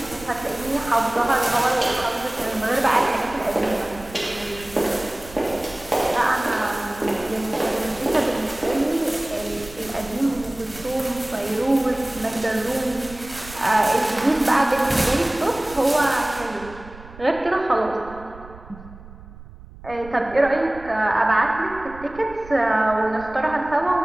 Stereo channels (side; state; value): right; noise; rumble, 18 dB below the sound